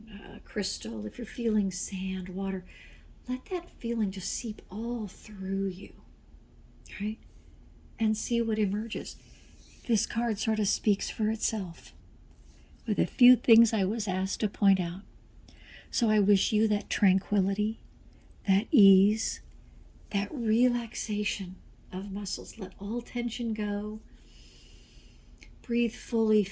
a crystal, if you're feeling sand, water, let that feeling just seep all through you, right? And see what emerges. This card sort of speaks for itself with a few things I was asked to point out. So I wish you that tranquility, that ease, that relaxation of muscles. Let all tension go. Breathe fully,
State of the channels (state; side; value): identical; both; correlation 1.00